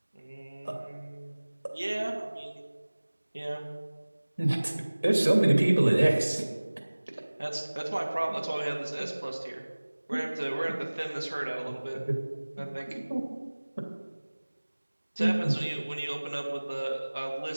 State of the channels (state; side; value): inverted; both; correlation -1.00